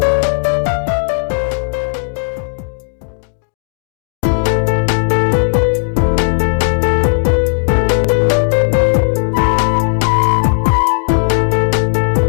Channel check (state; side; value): silent; right; digital silence